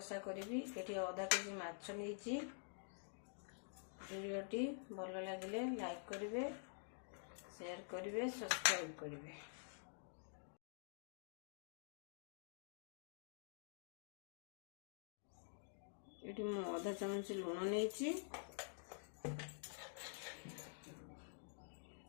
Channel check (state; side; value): silent; right; digital silence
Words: करी एटी आधा केजी माछ नहीं। वीडियोटी भल लगे लाइक करेंगे, शेयर करेंगे, सब्सक्राइब करेंगे। ये मु आधा चामच लुण नहीं,